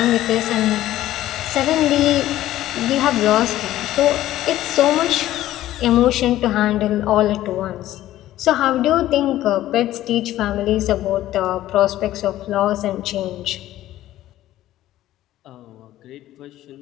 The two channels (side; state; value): right; quieter; 14.2 dB